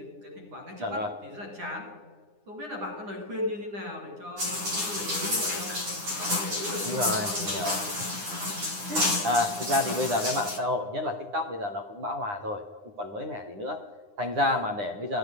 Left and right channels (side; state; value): left; late; 9.9 ms